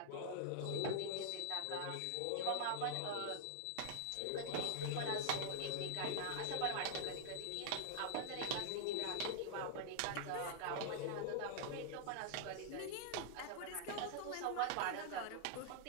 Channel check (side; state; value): both; different; correlation -0.01